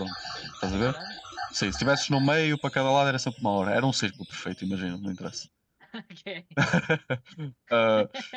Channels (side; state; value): both; identical; correlation 1.00